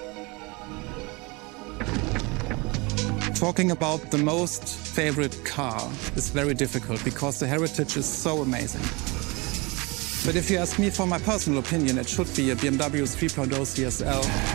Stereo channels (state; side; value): quieter; left; 26.6 dB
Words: Talking about the most favorite car is very difficult because the heritage is so amazing. But if you ask me for my personal opinion, it should be a BMW 3.0 CSL.